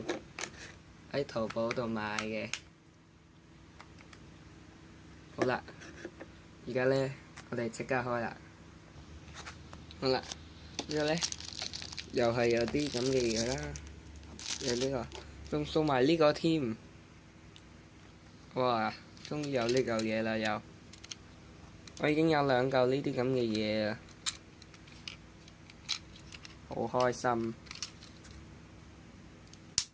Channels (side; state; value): both; identical; correlation 1.00